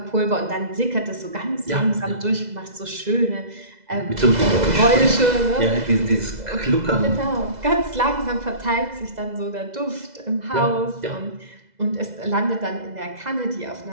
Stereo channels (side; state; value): left; late; 2.0 ms